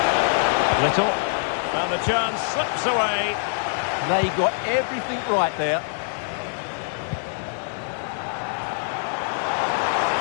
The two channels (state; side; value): silent; right; digital silence